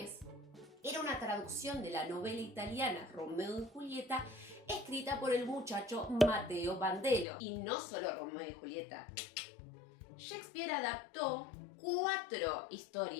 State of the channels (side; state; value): right; drops out; at 7.2 s